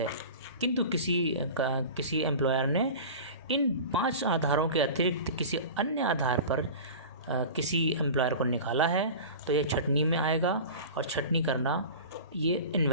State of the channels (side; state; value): both; inverted; correlation -0.34